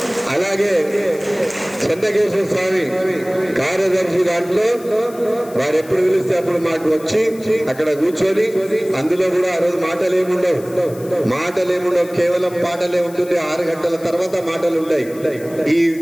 అలాగే చంద్రకేశ్వర స్వామి కార్యదర్శి దాంట్లో వారు ఎప్పుడు పిలిస్తే అప్పుడు మాకు వచ్చి అక్కడ కూర్చొని, అందులో కూడా ఆ రోజు మాటలేముండవు, కేవలం పాటలే ఉంటుంది. 6 గంటల తర్వాత మాటలు ఉంటాయి.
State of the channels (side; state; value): left; noise; hiss, 21 dB below the sound